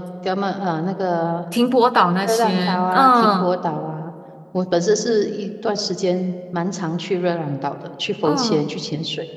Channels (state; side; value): identical; both; correlation 1.00